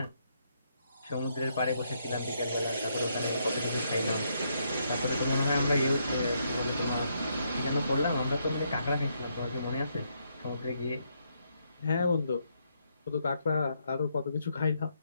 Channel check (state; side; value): inverted; both; correlation -0.76